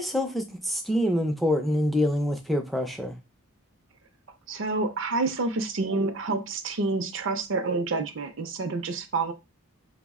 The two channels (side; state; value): both; normal; correlation 0.47